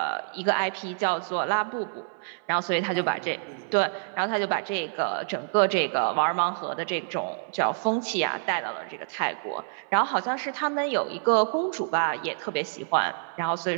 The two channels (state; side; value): silent; left; 58 dB below the other